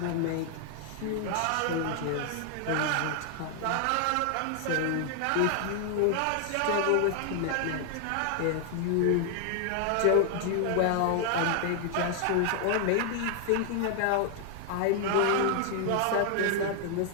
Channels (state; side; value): different; both; correlation 0.00